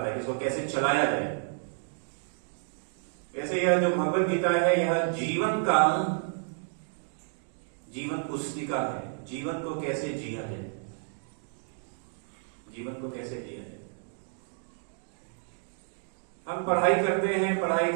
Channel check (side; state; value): left; silent; 58 dB below the other